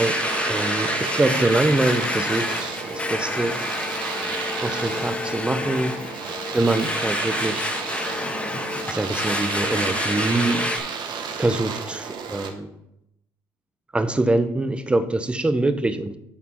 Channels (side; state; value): both; normal; correlation 0.73